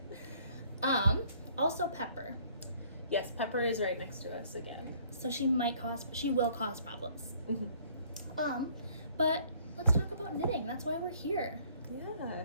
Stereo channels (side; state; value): both; inverted; correlation -0.59